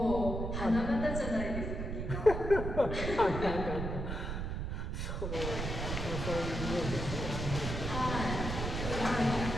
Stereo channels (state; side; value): noise; right; rumble, 3 dB below the sound